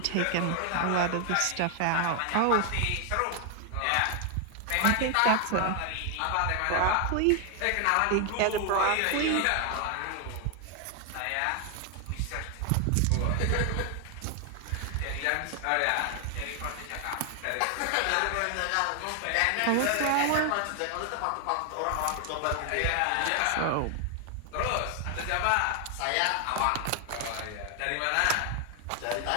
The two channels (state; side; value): different; both; correlation 0.00